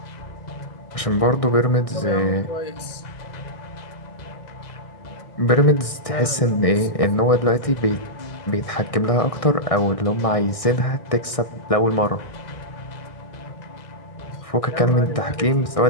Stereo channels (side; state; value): right; late; 1.6 ms